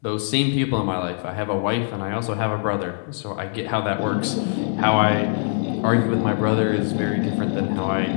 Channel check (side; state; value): right; silent; 62 dB below the other